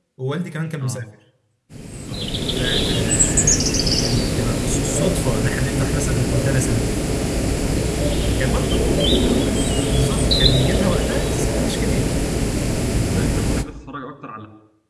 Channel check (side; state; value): both; identical; correlation 1.00